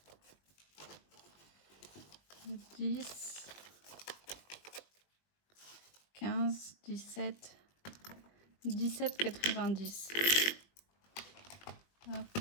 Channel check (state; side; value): late; right; 21 ms